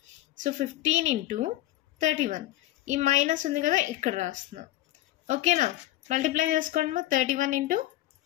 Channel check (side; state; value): right; quieter; 15.6 dB